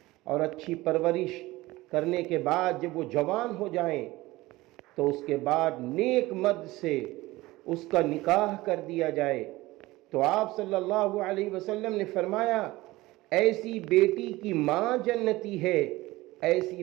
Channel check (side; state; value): left; quieter; 19.2 dB